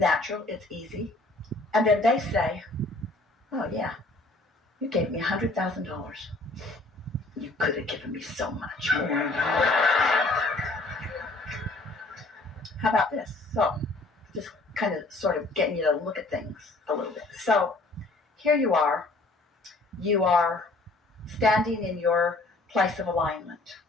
It's easy. And then they say, oh, yeah, you gave me $100,000. You could have given me so much more. How about this? So just kind of sort of getting you to look at things a little bit. So here you are. You are standing in your place of alignment.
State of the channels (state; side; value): quieter; right; 3.0 dB